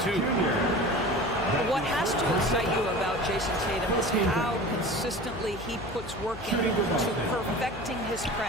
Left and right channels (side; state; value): left; noise; hum, 15 dB below the sound